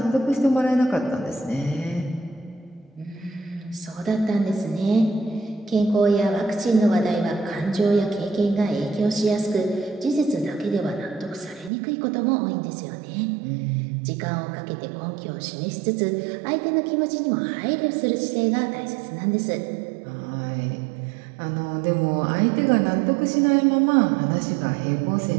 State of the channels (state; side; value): drops out; left; at 11.7 s